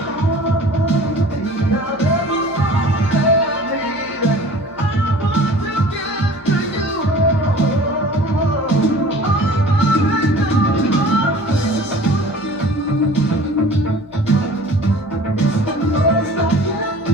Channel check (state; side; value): normal; both; correlation 0.45